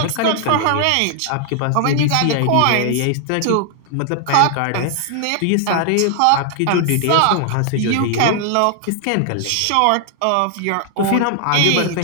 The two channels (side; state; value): both; different; correlation 0.00